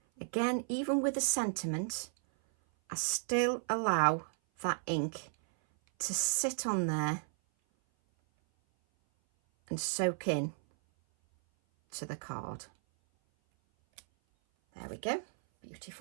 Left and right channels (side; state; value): left; silent; 55 dB below the other